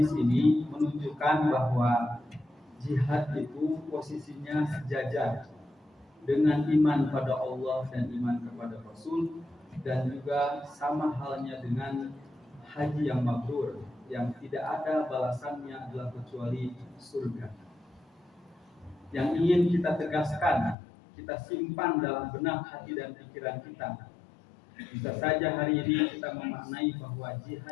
ini menunjukkan bahwa jihad itu posisinya sejajar dengan iman pada Allah dan iman kepada Rasul, dan juga sama halnya dengan haji yang mabrur, yang tidak ada balasannya adalah kecuali surga. Yang ingin kita tegaskan, kita simpan dalam benak hati dan pikiran kita. Bisa saja hari ini kita memaknai bahwa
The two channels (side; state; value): right; drops out; at 20.8 s